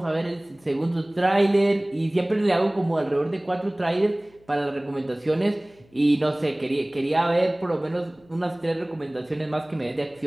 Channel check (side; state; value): left; noise; hum, 30 dB below the sound